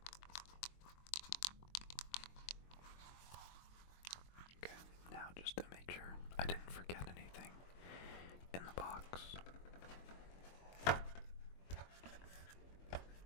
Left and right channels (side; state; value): right; late; 22 ms